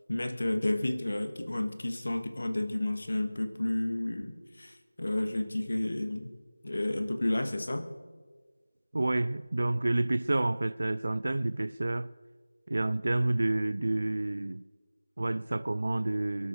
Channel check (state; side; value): inverted; both; correlation -0.98